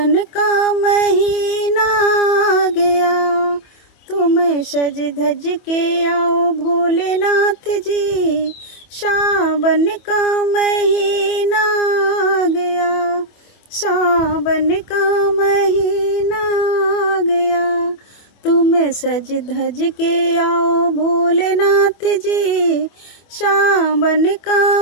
का महीना आ गया। तुम सज धज के आओ भोलेनाथ जी, सावन का महीना आ गया। सावन का महीना आ गया। तुम सज धज के आओ भोलेनाथ जी, सावन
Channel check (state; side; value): late; right; 24 ms